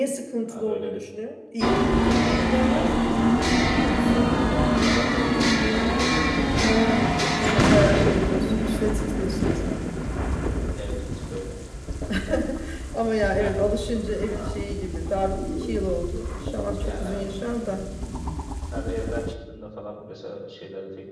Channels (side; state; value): both; identical; correlation 1.00